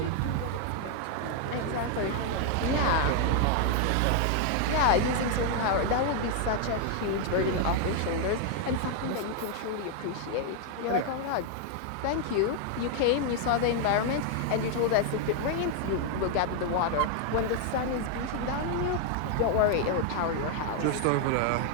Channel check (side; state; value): both; different; correlation 0.00